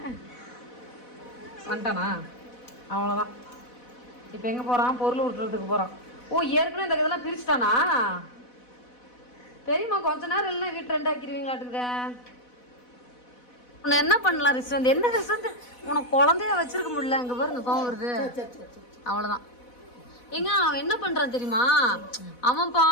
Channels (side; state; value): right; late; 4.1 ms